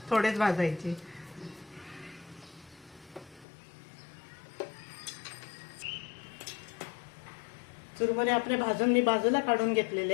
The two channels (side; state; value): right; drops out; at 3.5 s